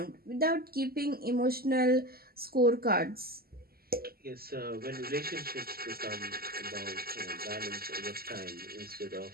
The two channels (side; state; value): left; late; 0.44 ms